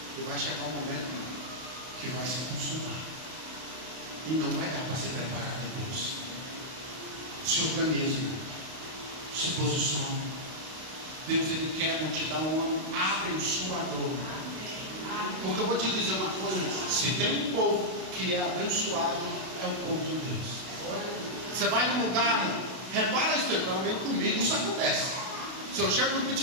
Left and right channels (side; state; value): left; late; 32 ms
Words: E vai chegar um momento que vai se consumar. E não vai dar para se preparar depois. Se organize, se posicione. Deus, Ele quer te dar um ano abençoador. Porque eu vou te dizer uma coisa: se tem um povo que é abençoado é o povo de Deus. Você vai num lugar, repara isso aí, pelo menos comigo isso acontece. Se eu chego no